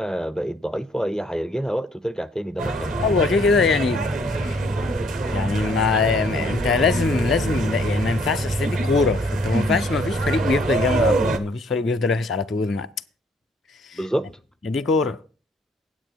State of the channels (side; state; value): both; normal; correlation 0.64